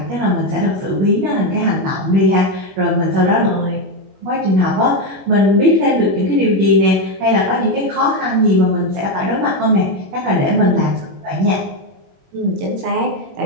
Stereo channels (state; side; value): late; left; 21 ms